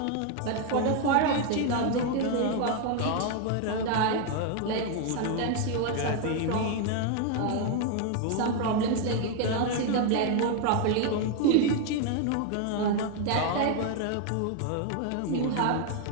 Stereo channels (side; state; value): both; different; correlation 0.01